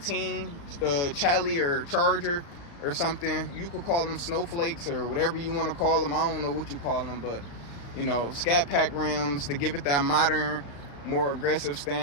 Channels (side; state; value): right; late; 35 ms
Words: Chally or Charger or something. You could call them snowflakes or whatever you want to call them. I don't know what you call them, but you know, Scat Pack rims to give it that modern, more aggressive